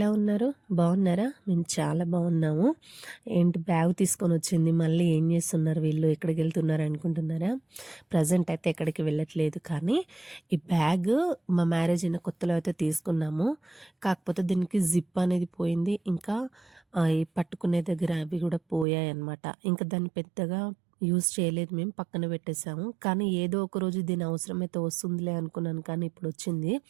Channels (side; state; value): left; drops out; at 18.9 s